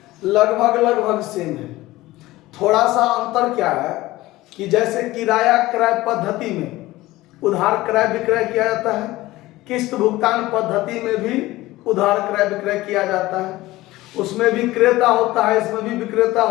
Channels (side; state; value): right; quieter; 18.0 dB